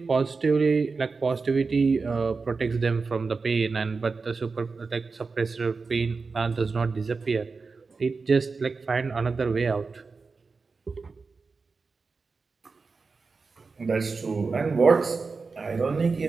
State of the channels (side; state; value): left; quieter; 4.4 dB